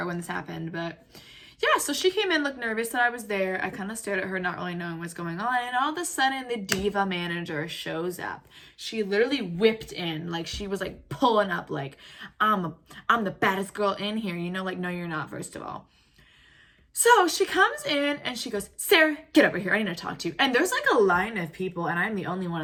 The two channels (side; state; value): both; identical; correlation 1.00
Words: when this happened, but yeah, so she came in, looked nervous that I was there. I kind of stared at her, not really knowing what's going on. And all of a sudden, the diva manager shows up. She literally whipped in, like she was like pulling up, like I'm the baddest girl in here. You know, like no, you're not. First of all. So she comes in and she goes, Sarah, get over here. I need to talk to you. And there's like a line of people, and I'm the only one